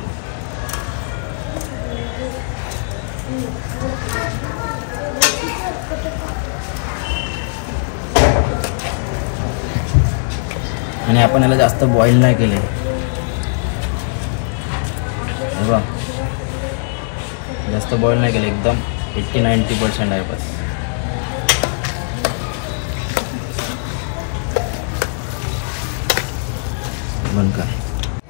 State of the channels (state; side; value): silent; right; digital silence